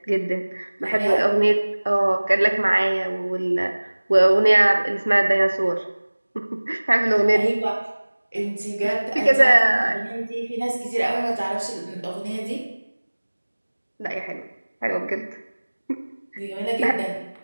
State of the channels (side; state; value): both; inverted; correlation -1.00